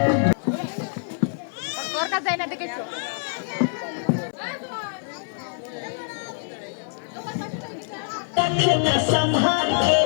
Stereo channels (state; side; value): silent; right; 62 dB below the other